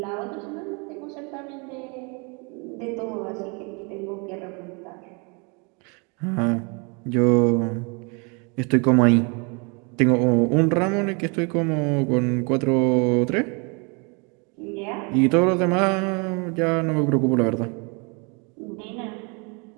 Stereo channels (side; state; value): left; quieter; 32.7 dB